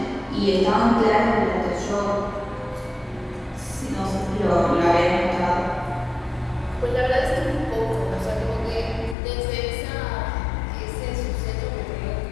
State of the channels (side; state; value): right; drops out; at 9.2 s